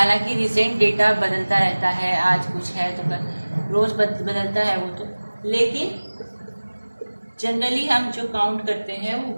रिसेंट डेटा बदलता रहता है, आज कुछ है तो कल रोज़ बदलता है वो तो, लेकिन जनरली हम जो काउंट करते हैं वो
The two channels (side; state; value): both; inverted; correlation -1.00